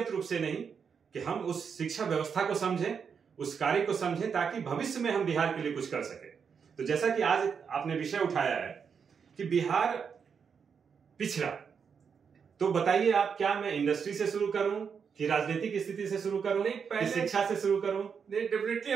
रूप से नहीं, कि हम उस शिक्षा व्यवस्था को समझें, उस कार्य को समझें, ताकि भविष्य में हम बिहार के लिए कुछ कर सके। तो जैसा कि आज आपने विषय उठाया है कि बिहार पिछड़ा, तो बताइए आप, क्या मैं इंडस्ट्री से शुरू करूं कि राजनीतिक स्थिति से शुरू करूं, कि शिक्षा से शुरू करूं? नहीं, डेफिनेटली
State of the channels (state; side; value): quieter; left; 6.5 dB